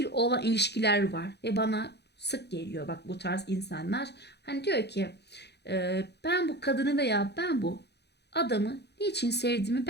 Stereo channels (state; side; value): late; right; 0.49 ms